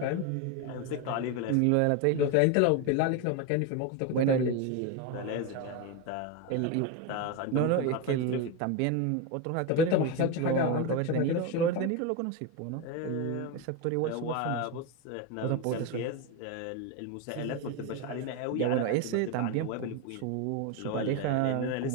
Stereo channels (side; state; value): both; different; correlation 0.02